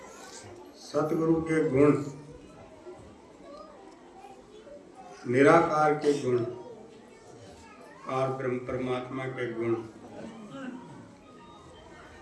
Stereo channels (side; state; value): both; identical; correlation 1.00